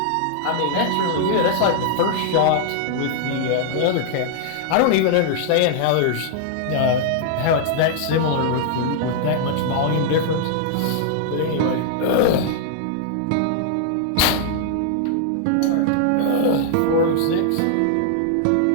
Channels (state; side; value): different; both; correlation -0.01